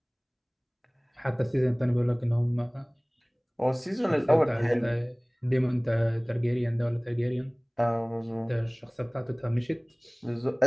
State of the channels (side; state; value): both; identical; correlation 1.00